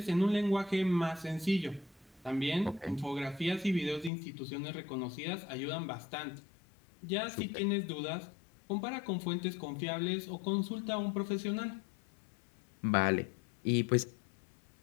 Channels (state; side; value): drops out; right; at 4.1 s